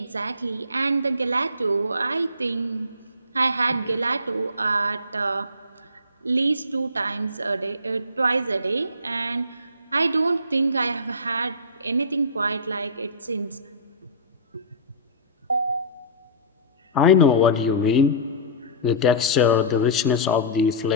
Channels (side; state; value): both; inverted; correlation -0.30